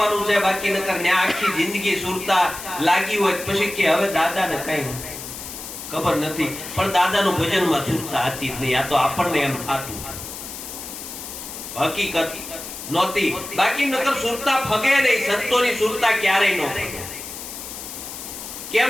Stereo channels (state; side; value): noise; left; hiss, 10 dB below the sound